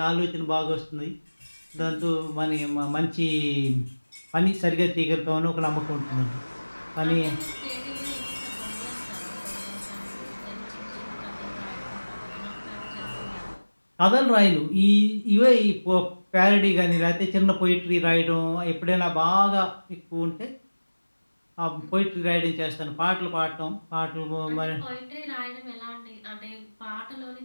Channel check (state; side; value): inverted; both; correlation -1.00